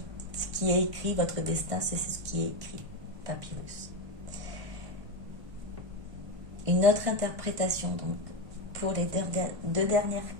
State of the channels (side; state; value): left; late; 1.5 ms